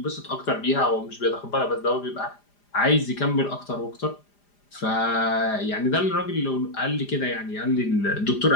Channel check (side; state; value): right; late; 4.9 ms